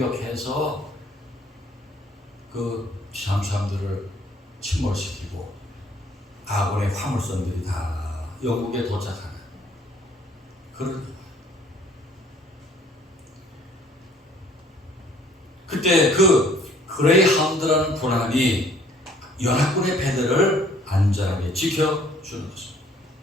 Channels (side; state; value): both; normal; correlation 0.59